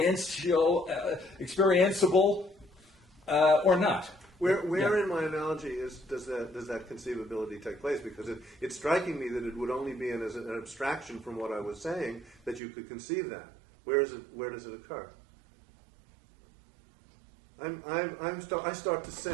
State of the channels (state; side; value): drops out; left; at 12.6 s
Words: or not. Where in my analogy does that conceivability take place? Because it's striking me that it would only be as an abstraction from what I was saying that you could conceive that. Where does it occur? I start to